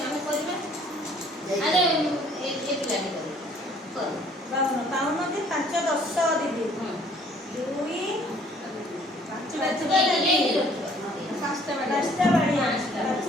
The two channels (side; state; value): both; normal; correlation 0.58